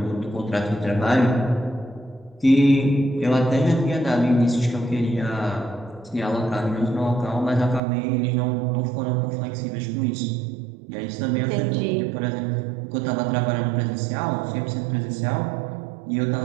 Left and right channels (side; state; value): left; drops out; at 7.8 s